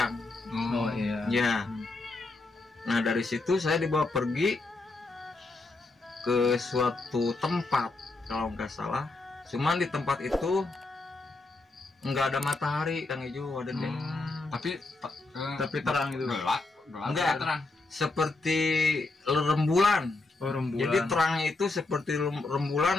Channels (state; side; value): quieter; right; 3.3 dB